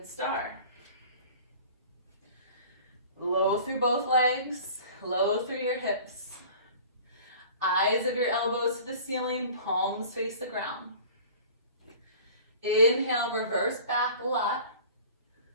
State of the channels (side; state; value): both; inverted; correlation -0.45